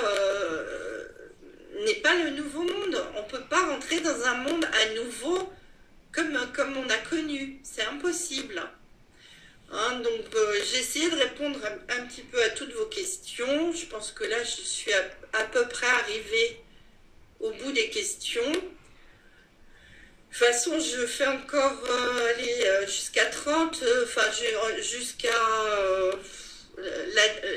le nouveau monde. On ne peut pas rentrer dans un monde à nouveau comme on a connu. C'est impossible. Hein, donc j'ai essayé de répondre un petit peu à toutes vos questions. Je pense que là, je suis à peu près arrivée au bout des questions. De toute façon, je fais encore jusqu'à 30, jusqu'à...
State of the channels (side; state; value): both; identical; correlation 1.00